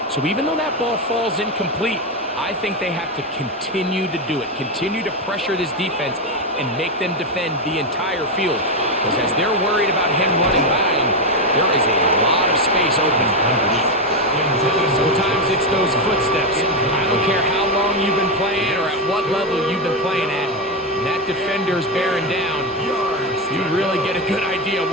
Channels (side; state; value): both; normal; correlation 0.09